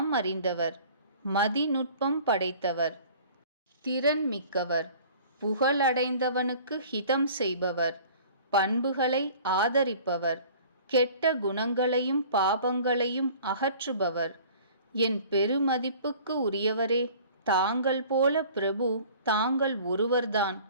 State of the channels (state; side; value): inverted; both; correlation -0.48